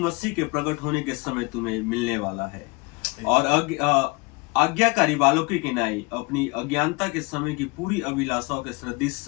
के प्रकट होने के समय तुम्हें मिलने वाला है, और आज्ञाकारी बालकों की नाई अपनी अज्ञानता के समय की पूरी अभिलाषाओं के सदृश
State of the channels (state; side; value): quieter; right; 27.5 dB